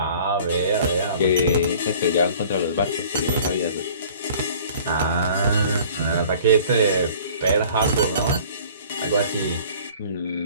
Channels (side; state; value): both; inverted; correlation -0.49